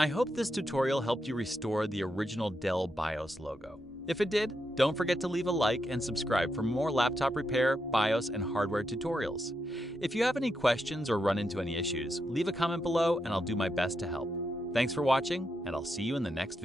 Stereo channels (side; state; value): both; normal; correlation 0.83